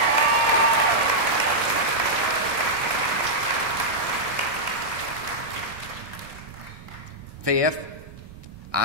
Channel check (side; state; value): both; normal; correlation -0.07